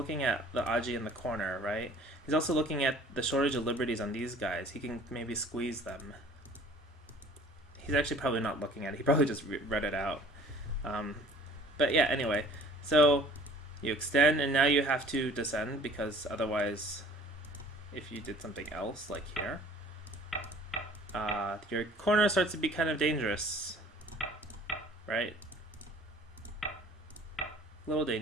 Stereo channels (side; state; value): both; normal; correlation 0.51